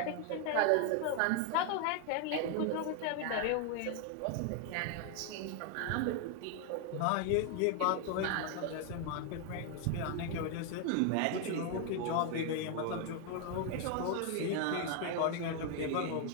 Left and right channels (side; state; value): both; different; correlation 0.01